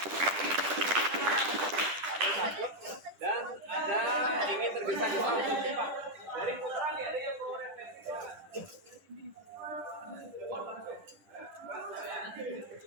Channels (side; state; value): left; late; 10 ms